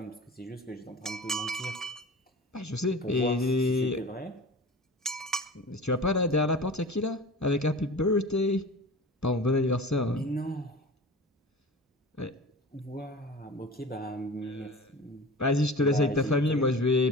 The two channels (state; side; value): normal; both; correlation 0.37